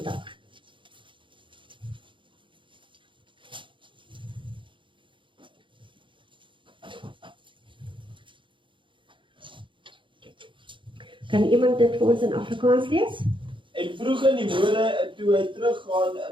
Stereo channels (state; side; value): late; left; 0.24 ms